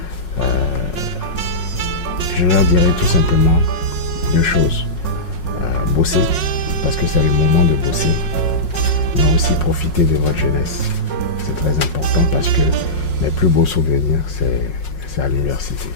Je leur dirais tout simplement deux choses. Bosser, parce que c'est le moment de bosser, mais aussi profiter de votre jeunesse. C'est très important parce que mes plus beaux souvenirs, c'est à l'université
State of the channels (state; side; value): late; right; 5.5 ms